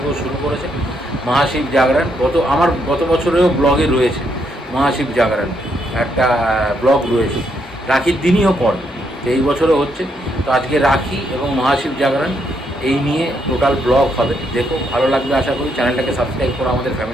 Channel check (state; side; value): normal; both; correlation 0.76